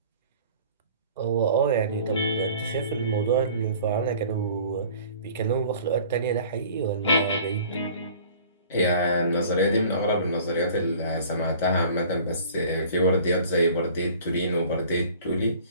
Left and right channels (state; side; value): inverted; both; correlation -0.48